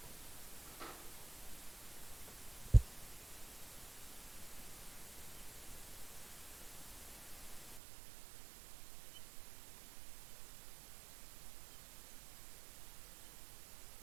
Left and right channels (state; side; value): drops out; left; at 7.8 s